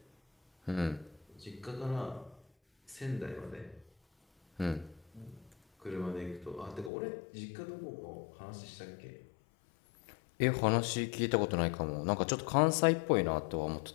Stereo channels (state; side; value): drops out; right; at 6.9 s